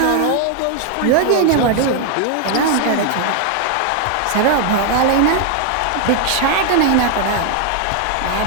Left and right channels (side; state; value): both; different; correlation 0.00